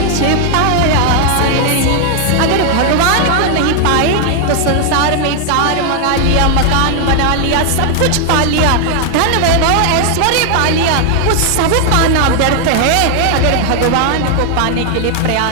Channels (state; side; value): different; both; correlation 0.00